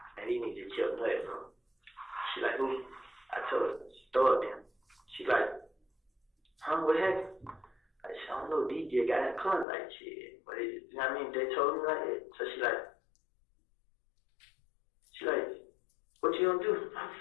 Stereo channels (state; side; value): drops out; right; at 9.7 s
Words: And he needed to chill play from. She like, who? I told her, she throw it in. She like, huh, what happened? I said, I don't know, DJ got in the car like shit. But it, you know what I mean? They told me like it. So she like, what you gonna do? What the